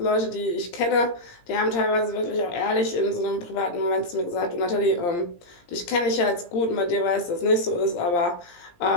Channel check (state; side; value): late; right; 17 ms